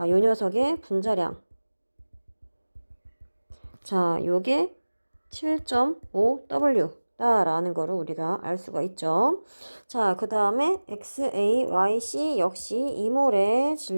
요 녀석의 분자량. 자, 요게 7.5W 라는 거를 우리가 알 수가 있죠. 자, 그 다음에 XAYC 역시 2몰의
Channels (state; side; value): inverted; both; correlation -1.00